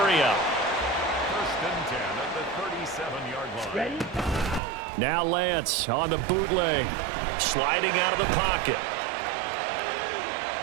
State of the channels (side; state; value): left; drops out; at 4.6 s